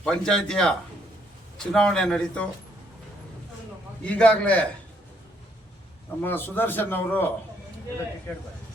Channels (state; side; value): normal; both; correlation 0.70